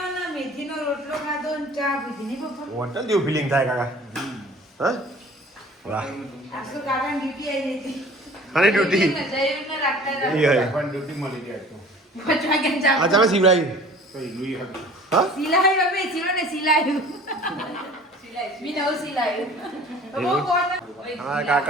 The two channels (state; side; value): normal; both; correlation 0.47